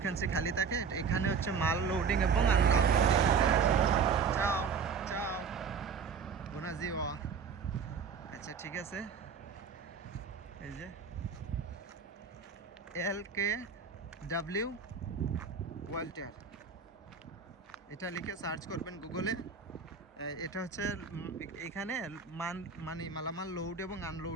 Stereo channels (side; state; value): left; quieter; 5.9 dB